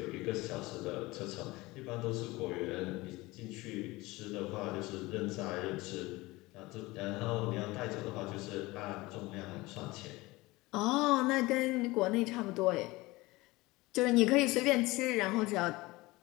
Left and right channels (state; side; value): quieter; right; 21.1 dB